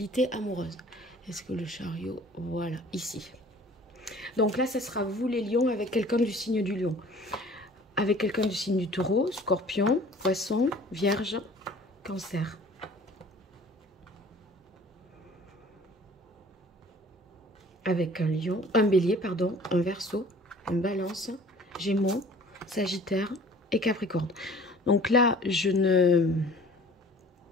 amoureuses. Est-ce que le chariot, voilà, ici. Donc là, ce sera vous les lions avec quelqu'un du signe du lion. Avec quelqu'un du signe du taureau, scorpion, poisson, vierge, cancer. Avec un lion, un bélier, pardon, un verseau, un balance, gémeaux, sagittaire et capricorne. Donc là, je ne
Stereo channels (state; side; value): normal; both; correlation 0.49